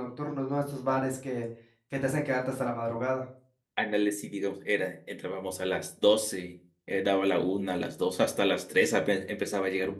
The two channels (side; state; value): both; identical; correlation 1.00